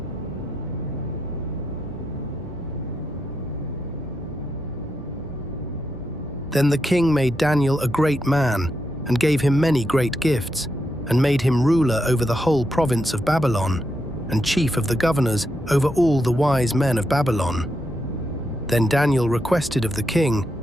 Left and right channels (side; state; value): both; normal; correlation 0.83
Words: Then the king made Daniel a great man, and gave him many great gifts, and made him ruler over the whole province of Babylon, and chief of the governors over all the wise men of Babylon. Then Daniel requested of the king,